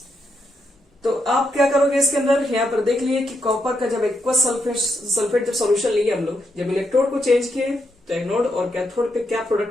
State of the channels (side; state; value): both; normal; correlation 0.80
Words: तो आप क्या करोगे इसके अंदर, यहाँ पर देख लिए कि कॉपर का जब एक्वस सल्फेट जब सॉल्यूशन लिए हम लोग, जब इलेक्ट्रोड को चेंज किए तो एनोड और कैथोड पे क्या